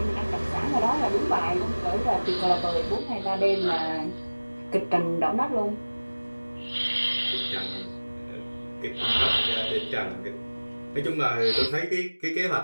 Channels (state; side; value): inverted; both; correlation -1.00